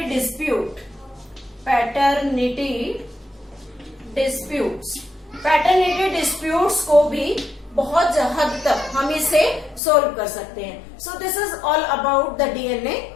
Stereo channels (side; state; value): right; drops out; at 9.8 s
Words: disputes को भी बहुत हद तक हम इसे सोल्व कर सकते हैं। So this is all about the DNA